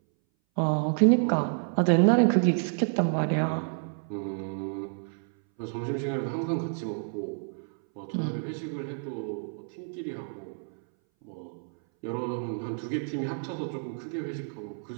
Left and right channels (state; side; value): silent; left; 58 dB below the other